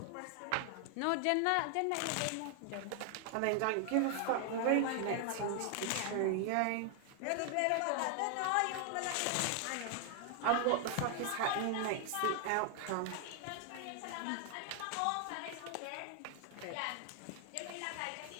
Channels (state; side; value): different; both; correlation 0.00